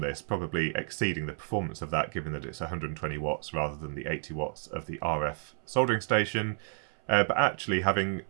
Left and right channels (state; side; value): silent; left; 57 dB below the other